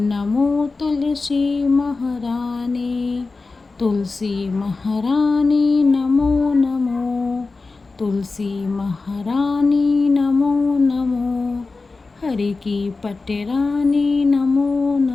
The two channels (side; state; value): right; quieter; 3.9 dB